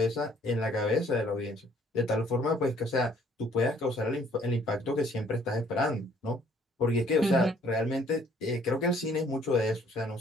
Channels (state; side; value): normal; both; correlation 0.60